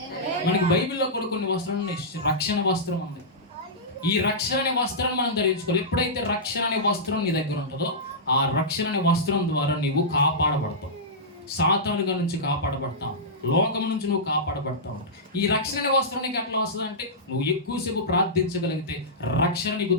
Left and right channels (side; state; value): both; normal; correlation -0.14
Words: మనకి బైబిల్లో కూడా కొన్ని వస్త్రాలు, రక్షణ వస్త్రం ఉంది. ఈ రక్షణ అనే వస్త్రాన్ని మనం ధరించుకోవాలి. ఎప్పుడైతే రక్షణ అనే వస్త్రం నీ దగ్గర ఉంటుందో ఆ రక్షణ అనే వస్త్రం ద్వారా నీవు కాపాడబడతావు. సాతానుగా నుంచి కాపాడబడతావు, లోకం నుంచి నువ్వు కాపాడబడతావు. ఈ రక్షణ అనే వస్త్రం నీకు ఎట్లా వస్తుంది అంటే నువ్వు ఎక్కువసేపు ప్రార్థించగలిగితే రక్షణ నీకు